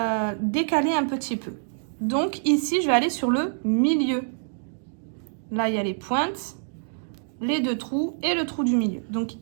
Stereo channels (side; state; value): left; silent; digital silence